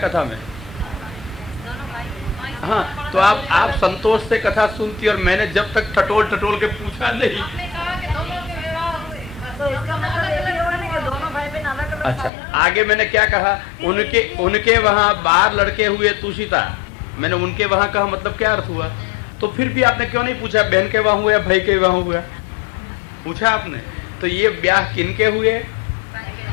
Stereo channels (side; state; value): right; drops out; at 12.3 s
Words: में? हाँ, तो आप संतोष से कथा सुनती और मैंने जब तक टटोल टटोल के पूछा नहीं। अच्छा, आगे मैंने क्या कहा? उनके वहां 12 लड़के हुए तुषिता। मैंने उनके वहां कहा मतलब क्या अर्थ हुआ? तो फिर भी आपने क्यों नहीं पूछा बहन के वहां हुआ या भाई के वहां हुआ? पूछा आपने। तो ये ब्याह किनके हुए?